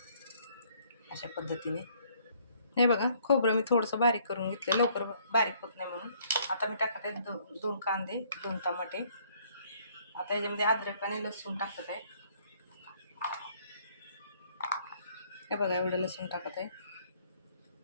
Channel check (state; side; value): inverted; both; correlation -0.63